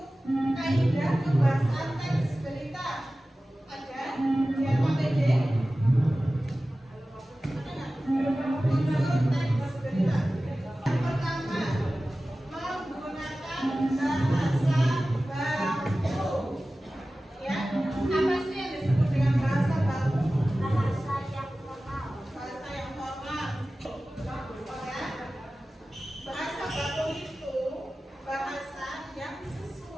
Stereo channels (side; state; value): both; normal; correlation 0.96